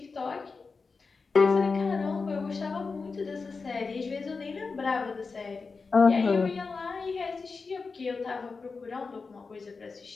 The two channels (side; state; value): right; quieter; 4.5 dB